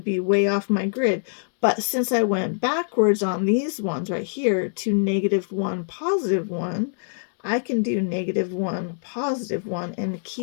be way off my grid. But since I went backwards on these ones right here to -1, +1, I can do -1, +1, and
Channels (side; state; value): right; silent; 62 dB below the other